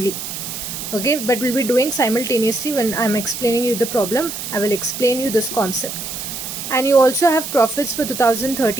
Okay, but we'll be doing simultaneously. When I'm explaining you the problem, I will explain you this concept. And you also have profits for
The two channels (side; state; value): right; noise; hiss, 7 dB below the sound